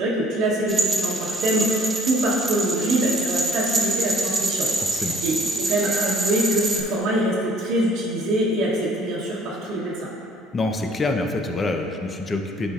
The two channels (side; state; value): both; normal; correlation 0.58